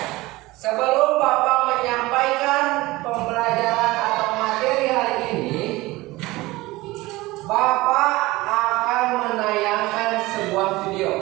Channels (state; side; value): quieter; left; 20.1 dB